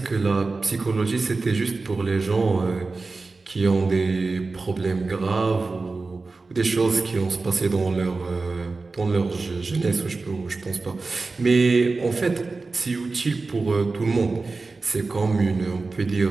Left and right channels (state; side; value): quieter; left; 3.8 dB